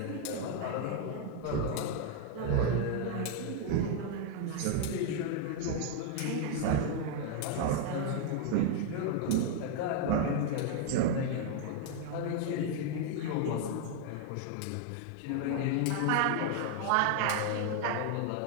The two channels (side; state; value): both; different; correlation 0.00